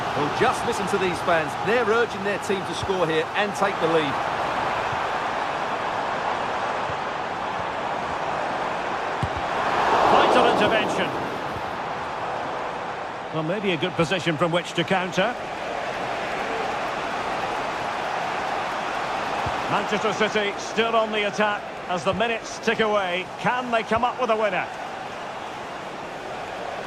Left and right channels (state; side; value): identical; both; correlation 1.00